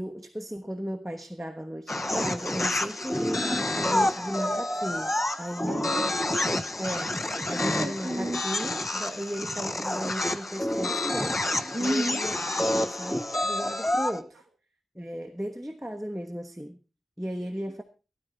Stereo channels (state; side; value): normal; both; correlation 0.91